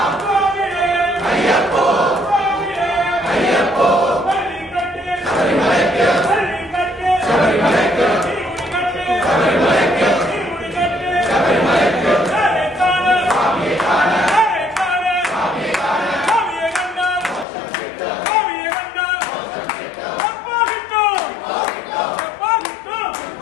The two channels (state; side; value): drops out; right; at 17.4 s